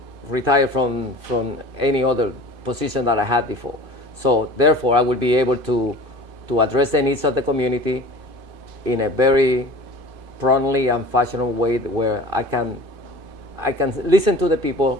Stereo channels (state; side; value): late; left; 2.5 ms